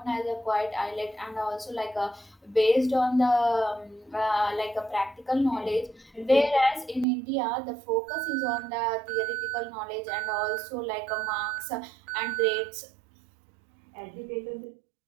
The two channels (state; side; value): drops out; left; at 7.1 s